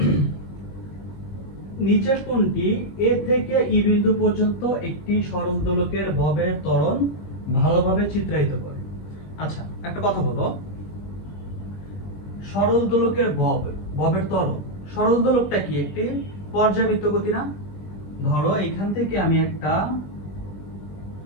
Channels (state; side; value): late; right; 20 ms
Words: নিচের কোনটি এ থেকে ই বিন্দু পর্যন্ত একটি সরল দোলকের ববের ত্বরণ ভালোভাবে চিত্রায়িত করে? আচ্ছা, একটা কথা বলো, সরল দোলকের ববের ত্বরণ, সরল দোলকটা কি একটি পর্যাবৃত্ত গতি না? ধরো এখান থেকে আমি একটা